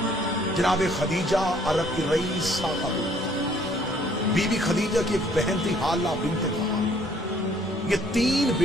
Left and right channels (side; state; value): right; noise; rumble, 21 dB below the sound